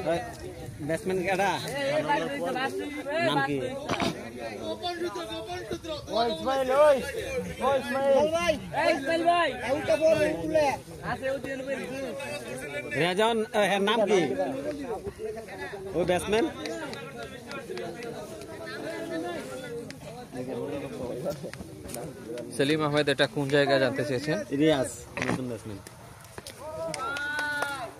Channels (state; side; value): identical; both; correlation 1.00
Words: ব্যাটসম্যান কেটা নাম কি? রেজন, নাম কি ওই ব্যাটসম্যান? সেলিম আহমেদ এটা কোন জায়গায় জানতে চেয়েছেন? রিয়াজ, নতুন ব্যাটসম্যান।